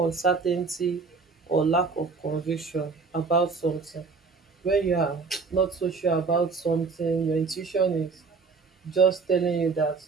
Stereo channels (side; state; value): left; quieter; 4.6 dB